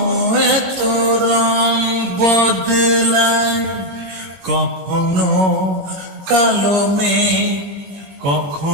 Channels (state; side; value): late; left; 21 ms